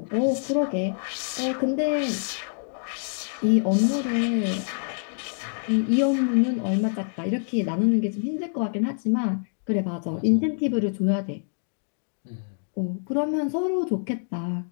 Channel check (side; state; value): right; silent; digital silence